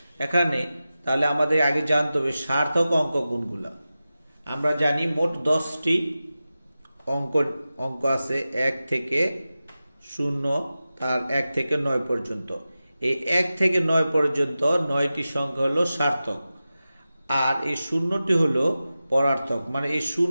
এখানে তাহলে আমাদের আগে জানতে হবে সার্থক অঙ্ক কোনগুলা। আমরা জানি মোট 10টি অঙ্ক আছে 1 থেকে 0 তার 1 থেকে 9 পর্যন্ত। এই 1 থেকে 9 পর্যন্ত 9টি সংখ্যা হলো সার্থক, আর এই শূন্যটি হলো পরার্থক, মানে এই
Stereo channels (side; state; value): both; inverted; correlation -0.94